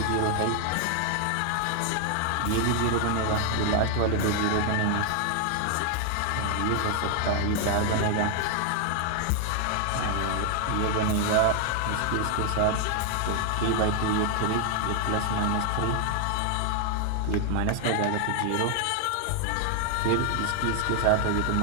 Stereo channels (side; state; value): both; different; correlation 0.00